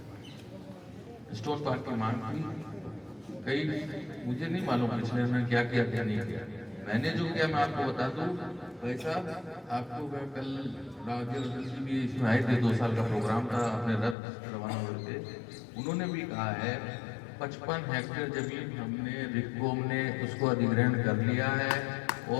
की मांग थी। कई मुझे नहीं मालूम पिछले में क्या किया क्या नहीं किया, मैंने जो किया मैं आपको बता दूं। वैसा आपको मैं कल राजेंद्र जी भी इसमें आए थे, 2 साल का प्रोग्राम था, अपने रथ रवाना हुए थे, उन्होंने भी कहा है 55 हेक्टेयर जमीन हमने रिक्कोम ने उसको अधिग्रहण कर लिया है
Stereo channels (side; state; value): right; drops out; at 14.2 s